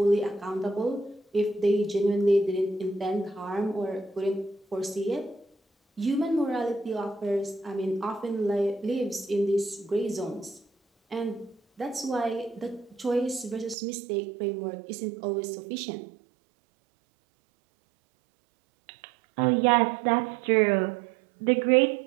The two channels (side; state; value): left; drops out; at 13.8 s